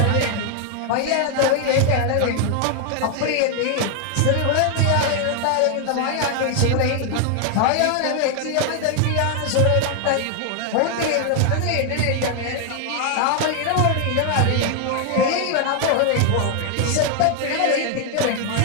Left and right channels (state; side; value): different; both; correlation 0.00